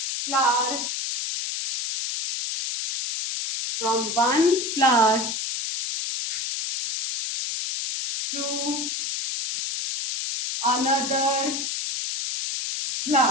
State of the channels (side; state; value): left; noise; hiss, 3 dB below the sound